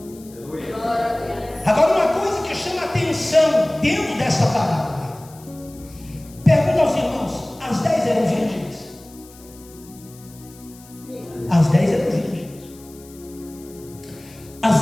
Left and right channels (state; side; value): noise; left; hiss, 23 dB below the sound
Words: Agora, uma coisa que chama a atenção dentro dessa parábola. Pergunta aos irmãos: as 10 eram virgens? As 10 eram virgens.